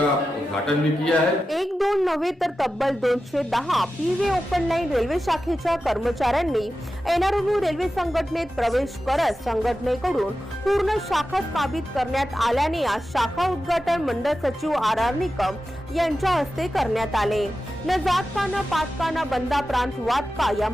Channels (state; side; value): normal; both; correlation 0.92